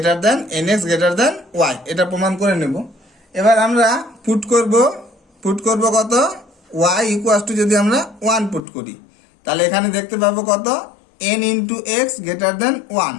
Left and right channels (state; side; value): drops out; right; at 8.6 s